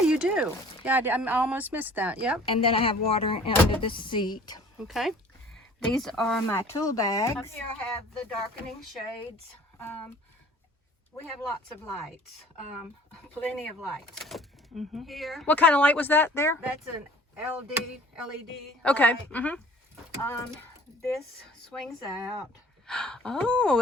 you do. Yeah, I almost missed that. Yep. And then I have water under the seat. Okay. These are my tool bags. Up here I have the darkening shades. We have lots of lights, plenty of lights. Mm-hmm. Here, What kind of light was that there? that's an LED. Okay. light. Mm-hmm. This swings out. Oh,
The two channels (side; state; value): both; normal; correlation 0.50